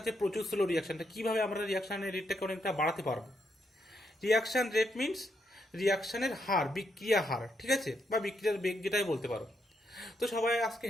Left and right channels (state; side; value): normal; both; correlation 0.79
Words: প্রচুর স্লো রিয়াকশনটা, কিভাবে আমরা রিয়াকশনের রেটটাকে অনেকটা বাড়াতে পারবো। রিয়াকশন রেট মিনস রিয়াকশনের হার, বিক্রিয়া হার। ঠিক আছে, বা বিক্রিয়ার বেগ যেটাই বলতে পারো। তো সবাই আজকে